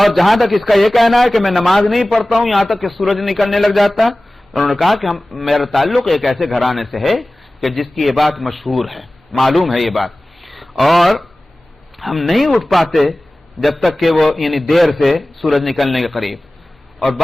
جہاں تک اس کا یہ کہنا ہے کہ میں نماز نہیں پڑھتا ہوں یہاں تک کہ سورج نکلنے لگ جاتا، انہوں نے کہا کہ میرا تعلق ایک ایسے گھرانے سے ہے کہ جس کی یہ بات مشہور ہے، معلوم ہے یہ بات، اور ہم نہیں اٹھ پاتے جب تک کہ وہ یعنی دیر سے سورج نکلنے کے قریب. اور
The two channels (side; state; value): both; normal; correlation 0.97